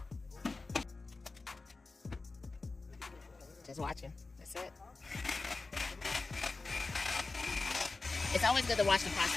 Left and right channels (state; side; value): quieter; right; 3.7 dB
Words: Just watching. That's it. It's always good to watch the